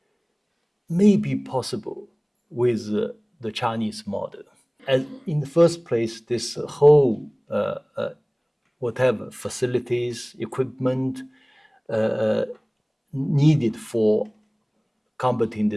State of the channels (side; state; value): both; identical; correlation 1.00